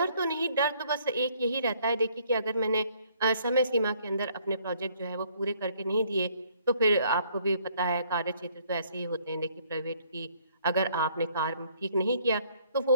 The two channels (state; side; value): inverted; both; correlation -0.63